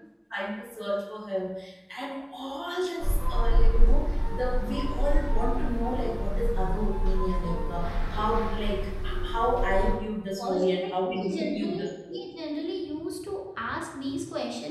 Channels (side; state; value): both; identical; correlation 1.00